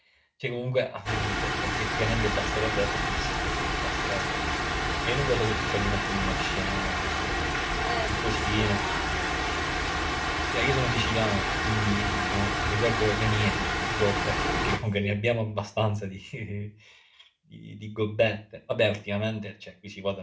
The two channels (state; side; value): identical; both; correlation 1.00